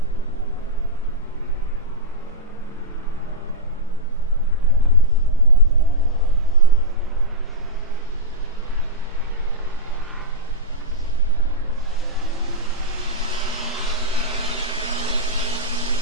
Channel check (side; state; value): both; normal; correlation -0.09